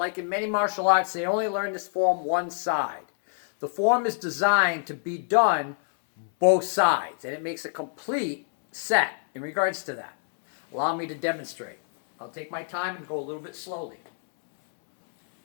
in many martial arts, they only learn this form one side. The form is designed to be done both sides, and it makes a complete set in regards to that. Allow me to demonstrate. I'll take my time and go a little bit slowly.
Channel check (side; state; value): right; silent; 61 dB below the other